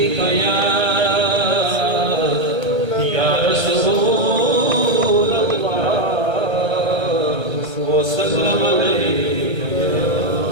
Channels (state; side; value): late; left; 1.3 ms